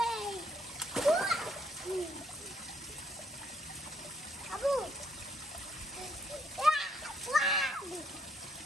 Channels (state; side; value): normal; both; correlation 0.69